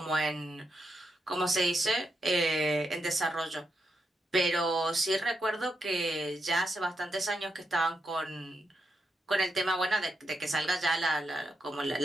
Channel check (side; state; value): both; normal; correlation 0.83